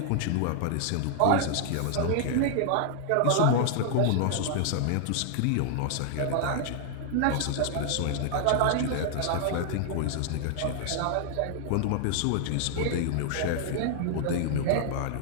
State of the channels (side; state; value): both; different; correlation 0.00